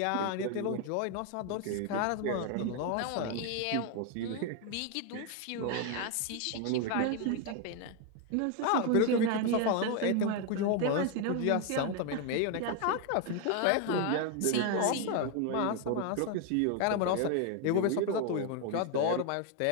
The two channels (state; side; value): different; both; correlation 0.01